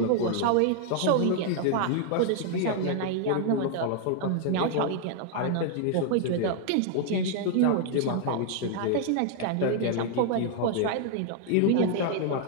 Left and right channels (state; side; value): different; both; correlation 0.00